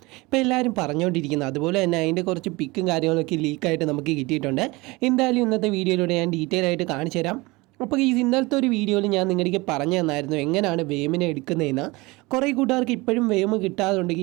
ഇപ്പോൾ എല്ലാവരും പറഞ്ഞുകൊണ്ടിരിക്കുന്നത്. അതുപോലെ തന്നെ അതിൻ്റെ കുറച്ച് പിക്കും കാര്യങ്ങളൊക്കെ ലീക്കായിട്ട് നമുക്ക് കിട്ടിയിട്ടുണ്ട്. എന്തായാലും ഇന്നത്തെ വീഡിയോയിലൂടെ ഞാൻ ഡീറ്റെയിൽ ആയിട്ട് കാണിച്ചു തരാം. അപ്പോൾ ഈ ഇന്നലത്തെ ഒരു വീഡിയോയിൽ ഞാൻ നിങ്ങളുടെ പറഞ്ഞു തന്നായിരുന്നു എങ്ങനെയാണ് വേമിനെ എടുക്കുന്നതെന്ന്. കുറേ കൂട്ടുകാർക്ക് ഇപ്പോഴും വേം കിട്ടാതുണ്ട്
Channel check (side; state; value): left; quieter; 23.3 dB